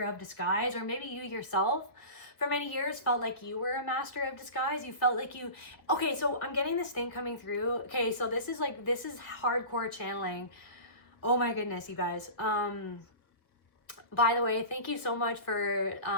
of disguise, or maybe you yourself for many years felt like you were a master of disguise. You felt like okay, so I'm getting this thing coming through. Okay, so this is hardcore channeling. Oh my goodness, you guys. By the way, thank you so much for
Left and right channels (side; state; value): right; late; 1.5 ms